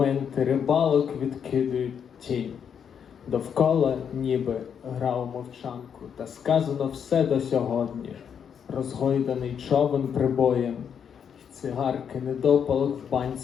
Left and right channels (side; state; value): right; quieter; 7.7 dB